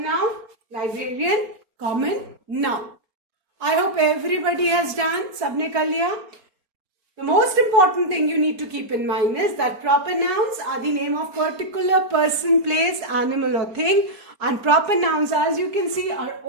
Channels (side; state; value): left; late; 4.3 ms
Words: librarian, common noun. I hope everybody has done. Sabne kar liya? The most important thing you need to keep in mind is that proper nouns are the name of particular person, place, animal or thing, and proper nouns, as you can see, are